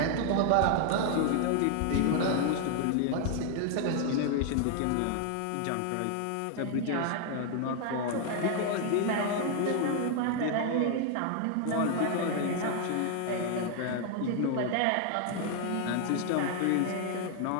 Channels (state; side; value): different; both; correlation 0.00